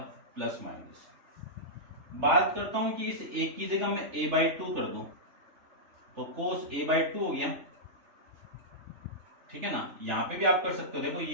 प्लस माइनस। बात करता हूं कि इस a की जगह मैं a/2 कर दूं तो कोस a/2 हो गया, ठीक है ना। यहां पे भी आप कर सकते हो, देखो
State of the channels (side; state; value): left; late; 3.3 ms